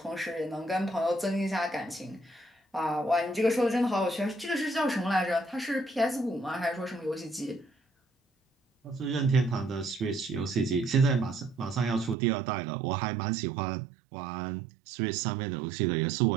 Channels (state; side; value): drops out; left; at 12.2 s